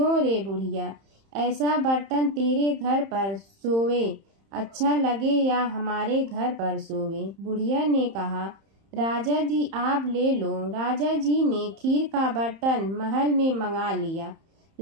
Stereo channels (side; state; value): left; late; 31 ms